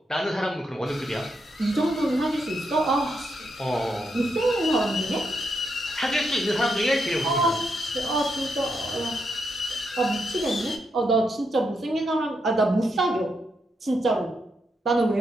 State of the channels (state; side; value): normal; both; correlation 0.81